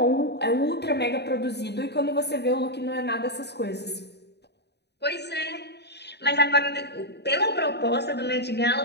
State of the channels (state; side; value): late; right; 0.49 ms